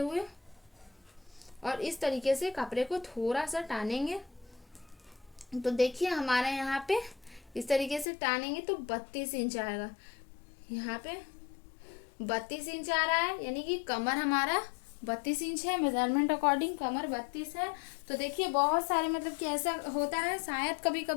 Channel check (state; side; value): drops out; right; at 8.1 s